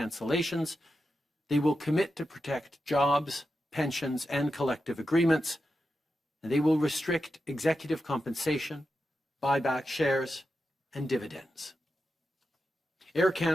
They will commit to protect jobs, pensions, and collective agreements. And they will restrict executive compensation, buy back shares, and dividends. Air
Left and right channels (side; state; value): both; normal; correlation 0.89